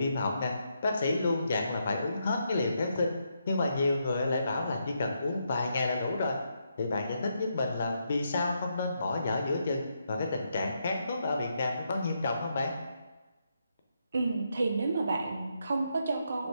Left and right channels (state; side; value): inverted; both; correlation -0.80